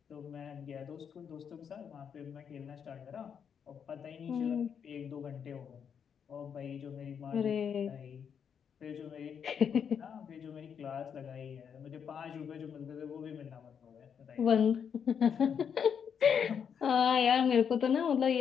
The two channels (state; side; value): quieter; right; 7.4 dB